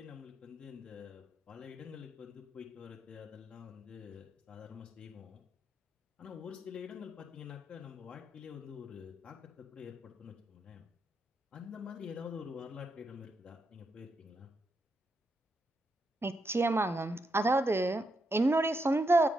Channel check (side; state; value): both; normal; correlation 0.82